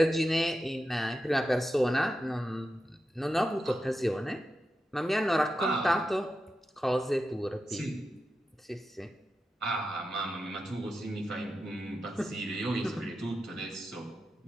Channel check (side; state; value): both; normal; correlation 0.90